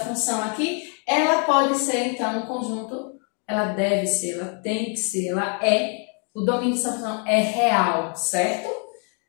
aqui, ela pode ser, então, um conjunto, ela deve ser, ela tem que ser, ela é, o domínio dessa função é real, certo?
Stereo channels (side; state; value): right; quieter; 39.7 dB